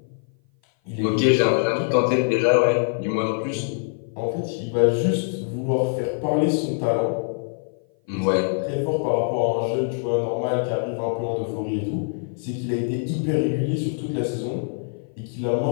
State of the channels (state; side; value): silent; right; 57 dB below the other